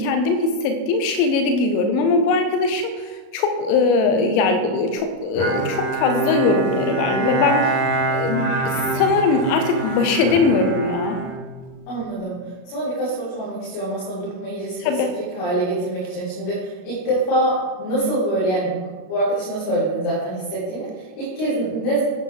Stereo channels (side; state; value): right; late; 33 ms